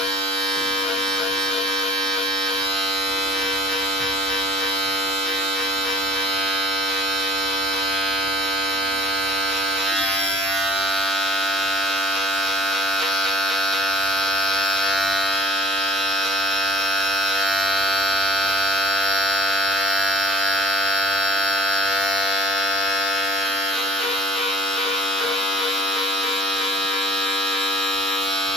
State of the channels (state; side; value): normal; both; correlation 0.51